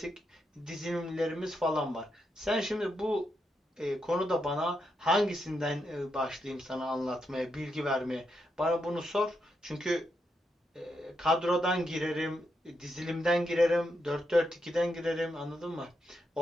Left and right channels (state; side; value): normal; both; correlation 0.82